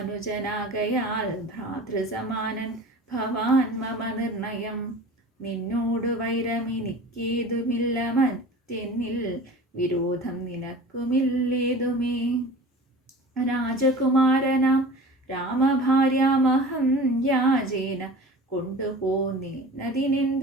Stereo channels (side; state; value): both; normal; correlation 0.39